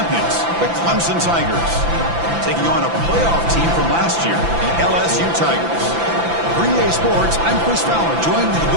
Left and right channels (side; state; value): left; late; 5.9 ms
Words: the Clemson Tigers, taking on a playoff team from last year, the LSU Tigers. For EA Sports, I'm Chris Fowler, joined in the